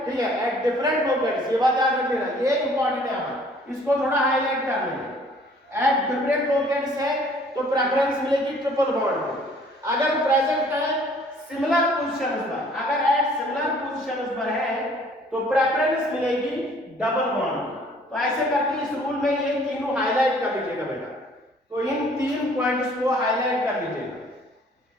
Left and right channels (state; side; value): normal; both; correlation 0.56